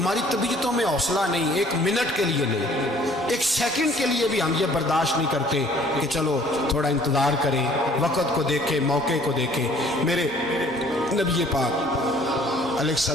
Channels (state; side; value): normal; both; correlation 0.56